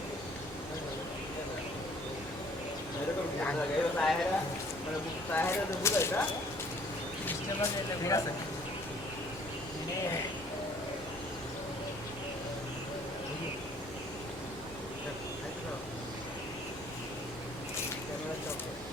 এরকম লাগে সাহেরা মানে সাহেরা তো বুঝাইতা ঠিক আছে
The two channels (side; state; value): both; normal; correlation 0.57